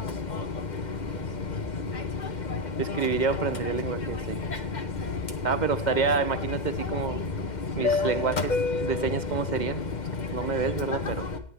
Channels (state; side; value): late; right; 2.1 ms